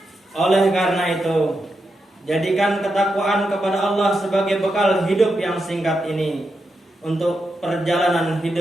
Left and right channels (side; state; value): both; normal; correlation 0.86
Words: Oleh karena itu, jadikan ketakwaan kepada Allah sebagai bekal hidup yang singkat ini untuk perjalanan